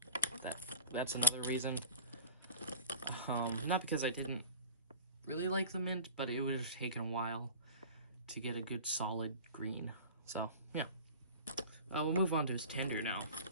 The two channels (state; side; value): inverted; both; correlation -0.36